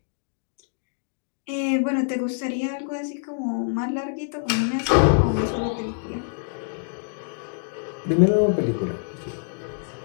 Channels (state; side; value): silent; right; digital silence